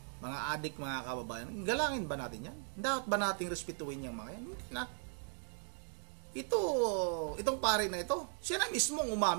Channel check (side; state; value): left; silent; 53 dB below the other